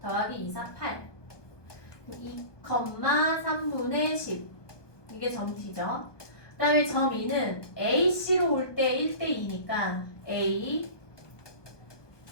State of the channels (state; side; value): late; right; 1.2 ms